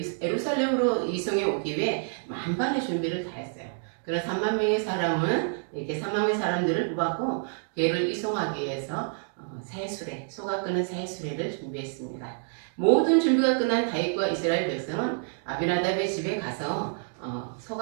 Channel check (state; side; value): silent; left; 59 dB below the other